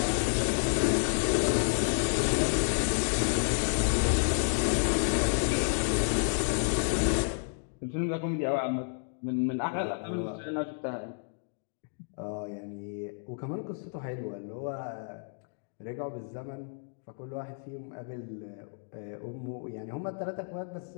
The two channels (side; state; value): right; silent; digital silence